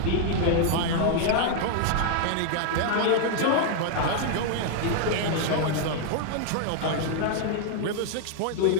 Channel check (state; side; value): different; both; correlation 0.00